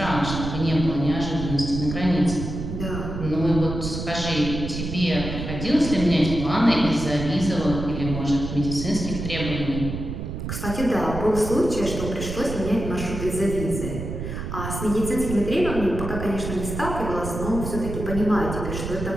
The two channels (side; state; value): right; noise; rumble, 6 dB below the sound